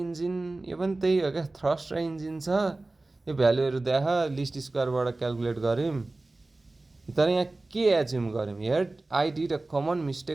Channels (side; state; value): left; quieter; 3.0 dB